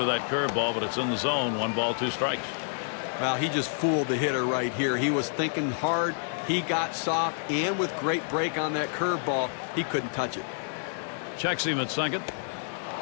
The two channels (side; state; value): right; silent; digital silence